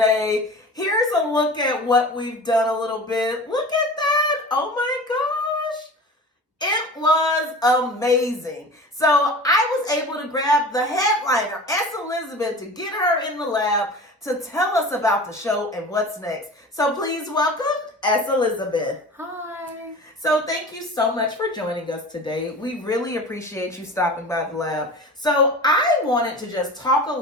Here's a look at what we've done a little bit. Look at that. Oh my gosh. It was amazing. So I was able to grab the headliner, S. Elizabeth, to get her in the lab to tell us about the show and what's next. So please welcome S. Elizabeth. Hi. So thank you so much for joining us today. We really appreciate you stopping by the lab. So I wanted to just talk a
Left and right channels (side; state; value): both; normal; correlation 0.37